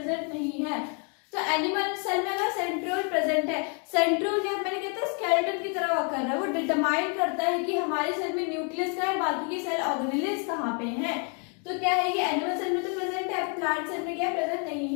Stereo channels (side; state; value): right; quieter; 38.8 dB